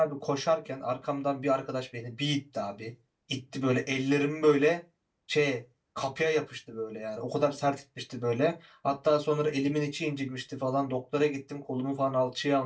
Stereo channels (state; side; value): identical; both; correlation 1.00